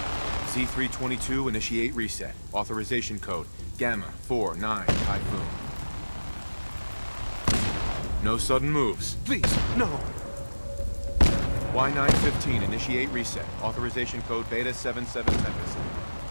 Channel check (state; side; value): inverted; both; correlation -1.00